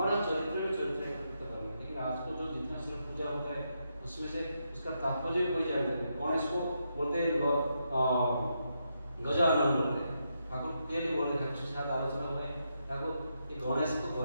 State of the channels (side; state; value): both; inverted; correlation -0.82